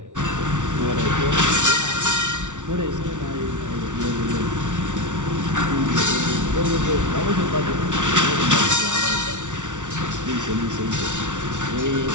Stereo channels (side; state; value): left; late; 0.86 ms